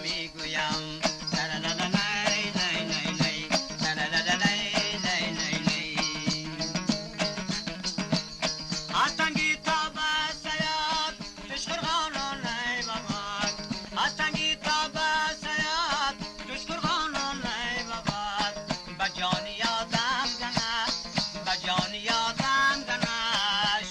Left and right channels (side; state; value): both; identical; correlation 1.00